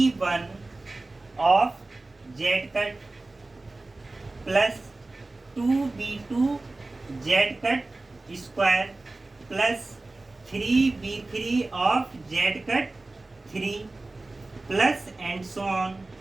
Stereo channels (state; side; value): quieter; left; 3.1 dB